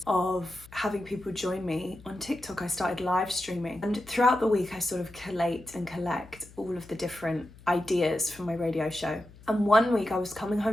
of having people join me on TikTok. I started live streaming, and throughout the week I sort of collate and collect all of the different ideas for my radio show. And one week I was coming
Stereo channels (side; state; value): left; noise; hum, 21 dB below the sound